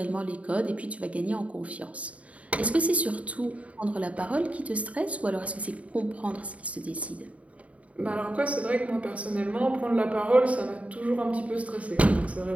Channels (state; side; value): late; left; 0.066 ms